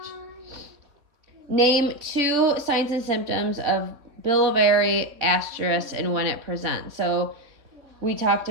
Name 2 signs and symptoms of biliary atreus and when it presents. So we talked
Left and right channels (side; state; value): left; late; 3.8 ms